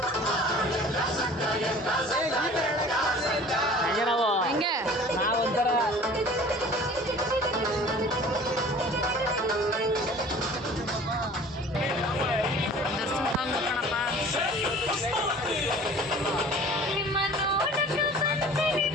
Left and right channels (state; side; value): normal; both; correlation 0.46